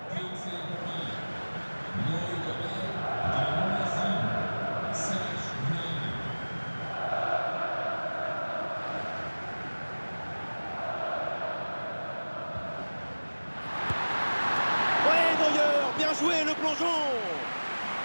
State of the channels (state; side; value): inverted; both; correlation -1.00